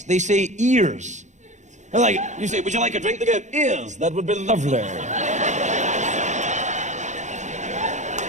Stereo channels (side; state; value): left; late; 0.35 ms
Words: They say ears. They're like, you say, "Would you like a drink?" They go, "Ears. That would be lovely."